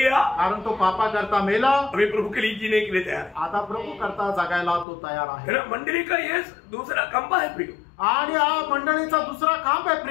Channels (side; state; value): right; drops out; at 4.9 s